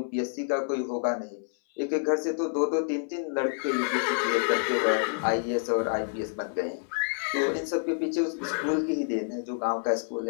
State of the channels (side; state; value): right; silent; 59 dB below the other